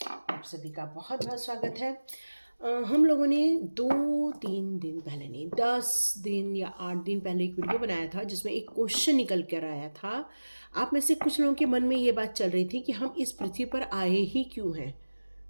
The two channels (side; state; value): both; inverted; correlation -1.00